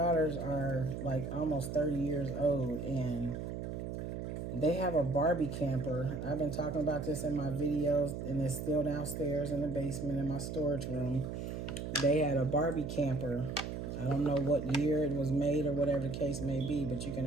are like almost 30 years old, and they have a Barbie camper. I've been talking about this in my videos, and it's still downstairs in the basement in my storage room. They had a Barbie camper. I don't know what year it was made or whatever the case may be, but you can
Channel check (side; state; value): right; noise; hum, 5 dB below the sound